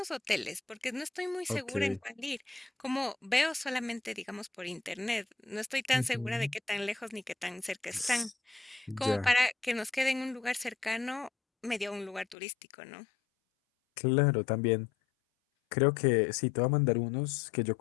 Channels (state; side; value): drops out; right; at 12.4 s